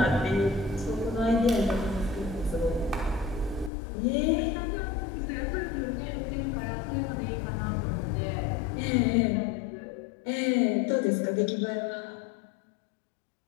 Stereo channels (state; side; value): drops out; right; at 3.7 s